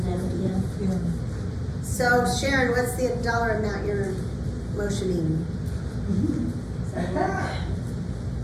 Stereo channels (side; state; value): both; identical; correlation 1.00